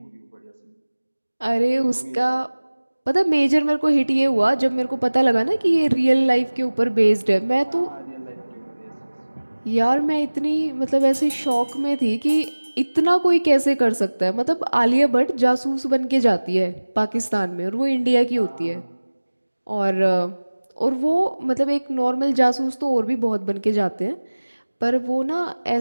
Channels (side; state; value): both; inverted; correlation -1.00